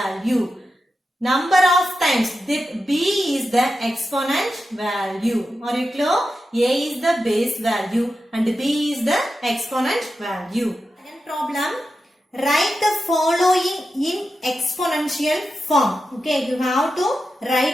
Number of times, b is the exponent value. Are you clear? A is the base value and b is the exponent value. Second problem, write the following in exponential form. Okay, you have to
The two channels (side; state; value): both; normal; correlation 0.90